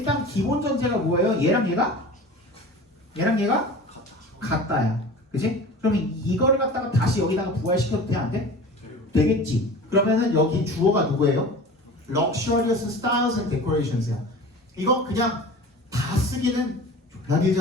기본 전제가 뭐예요? 얘랑 얘가 같다야. 그치? 그러면 이거를 갖다가 다시 여기다가 부활시켜도 돼? 안 돼? 되겠지. 그러면은 여기 주어가 누구예요? luxurious styles and decorations야. 이거 그냥 다 쓰기는 졸라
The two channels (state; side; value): normal; both; correlation 0.37